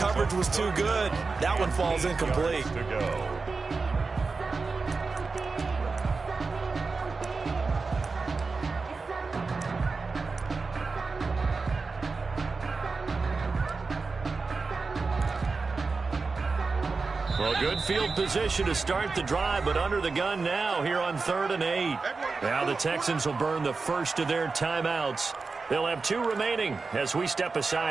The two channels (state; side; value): quieter; left; 4.2 dB